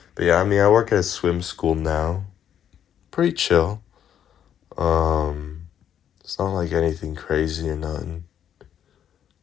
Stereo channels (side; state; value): right; quieter; 9.6 dB